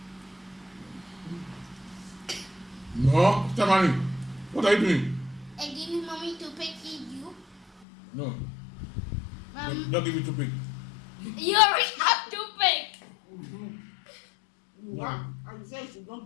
No, Stephanie, what are you doing? I give you mommy toothpick, you. No. Don't give it to pick. You already have toothpick. Wow. I said she should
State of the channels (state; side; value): drops out; right; at 7.9 s